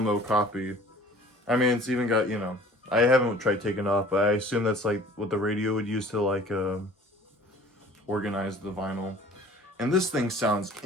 copy. I mean, it's even got, I haven't tried taking it off, but I assume that's like what the radio would use to like organize the vinyl. And this thing sounds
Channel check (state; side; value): normal; both; correlation 0.48